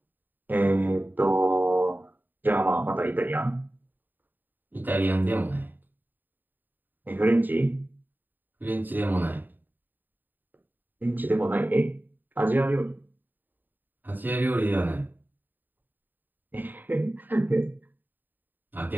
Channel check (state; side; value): late; left; 0.090 ms